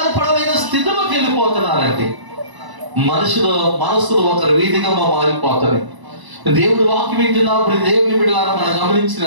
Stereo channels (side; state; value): left; late; 1.0 ms